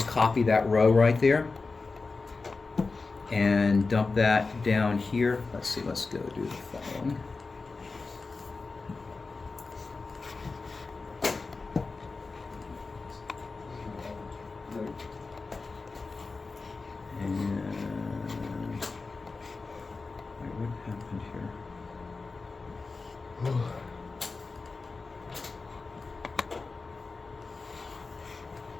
copy that row right there and dump that down here. Let's see. Let's go do the following. And wait, what happened here?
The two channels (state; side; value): quieter; right; 4.0 dB